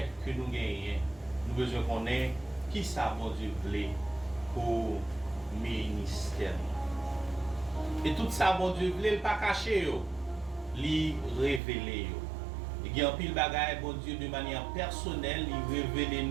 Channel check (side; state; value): left; drops out; at 11.6 s